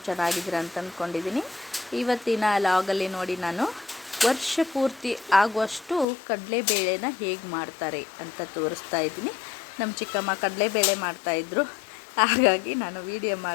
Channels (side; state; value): right; drops out; at 6.1 s